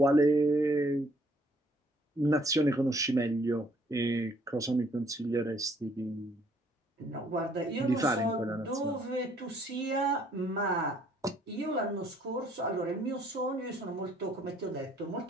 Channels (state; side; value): normal; both; correlation 0.64